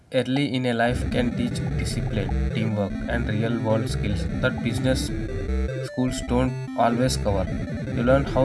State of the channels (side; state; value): both; identical; correlation 1.00